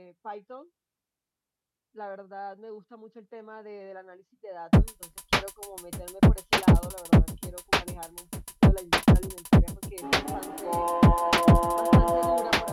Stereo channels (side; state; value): both; identical; correlation 1.00